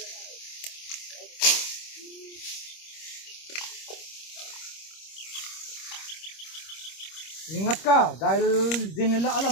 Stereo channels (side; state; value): right; late; 26 ms